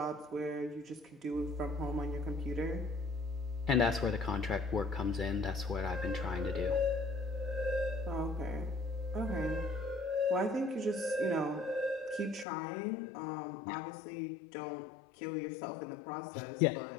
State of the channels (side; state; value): right; drops out; at 12.5 s